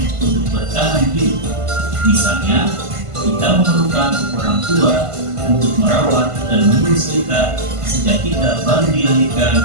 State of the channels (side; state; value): left; late; 1.5 ms